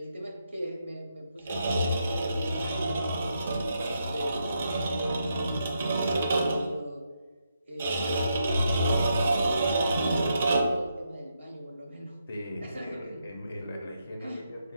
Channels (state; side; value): inverted; both; correlation -0.81